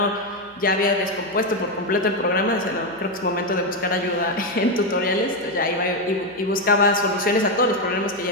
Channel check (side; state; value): right; noise; hum, 27 dB below the sound